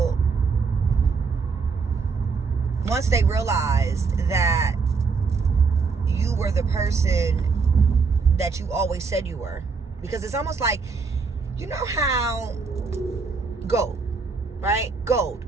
once they realized that you were the person that you always said you were, because it's almost like, you know how gold, right?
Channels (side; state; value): left; quieter; 4.9 dB